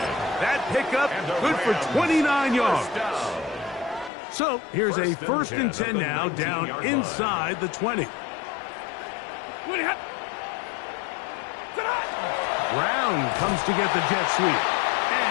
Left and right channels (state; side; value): drops out; right; at 4.1 s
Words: That pickup good for 29 yards. So here's a 1st and 10 now, down inside the 20. Brown comes to get the jet sweep.